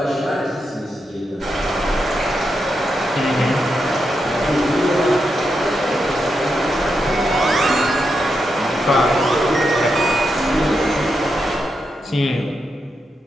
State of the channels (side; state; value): both; normal; correlation 0.85